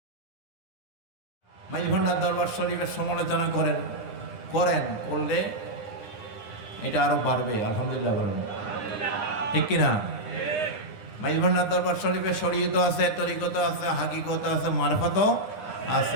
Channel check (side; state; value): right; late; 9.8 ms